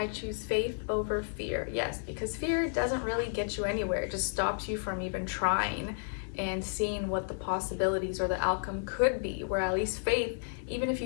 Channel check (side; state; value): right; silent; digital silence